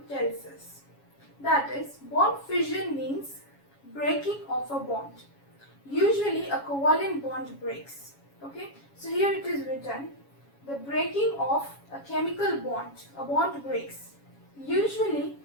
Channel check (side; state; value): right; late; 7.2 ms